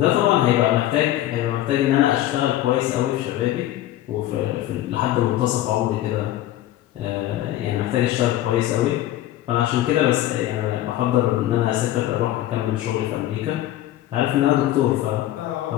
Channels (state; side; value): quieter; right; 14.0 dB